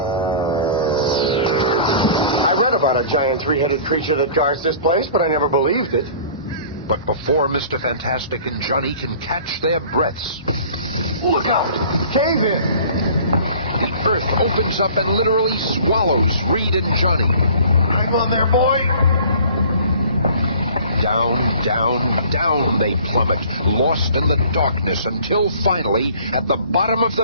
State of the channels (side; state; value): both; inverted; correlation -0.48